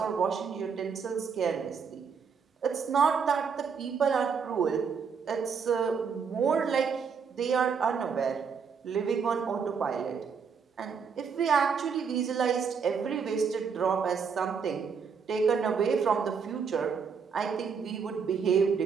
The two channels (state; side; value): quieter; left; 6.2 dB